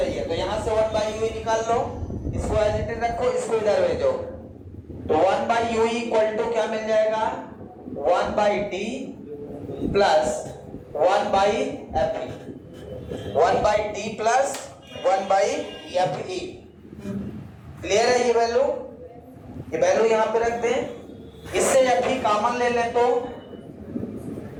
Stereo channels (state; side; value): identical; both; correlation 1.00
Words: तो यहां से 1 बाई यूई निकाल लो, इसको एज इट इज रखो, इसको इधर भेजो। तो 1 बाई यूई इक्वल टू क्या मिल जाएगा? 1 by T plus 1 by F E. 1 by T plus 1 by F E. Clear है? ये वैल्यू यहां पे रख दें। इससे एफ ई कॉमन ले लें तो